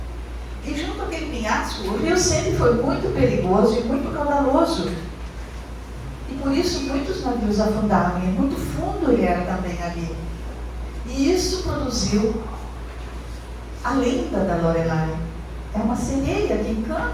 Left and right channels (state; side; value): identical; both; correlation 1.00